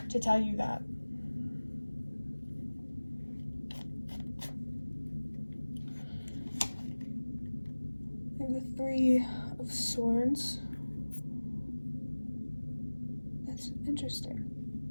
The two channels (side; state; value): both; inverted; correlation -1.00